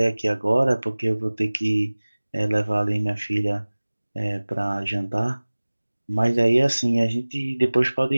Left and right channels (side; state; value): both; inverted; correlation -1.00